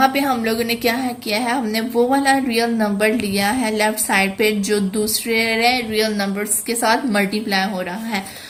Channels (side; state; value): both; identical; correlation 1.00